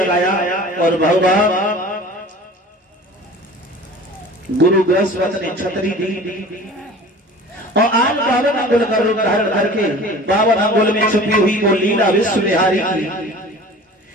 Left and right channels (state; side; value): normal; both; correlation 0.42